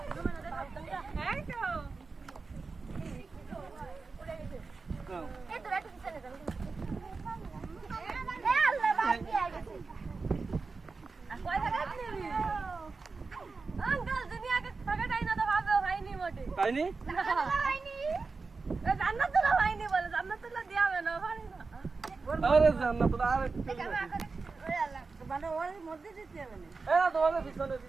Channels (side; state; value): left; quieter; 4.3 dB